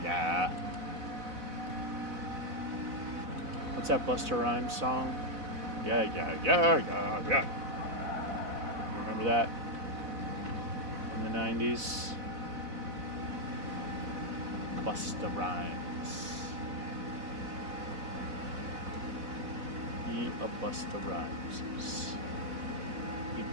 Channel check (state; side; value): late; left; 4.0 ms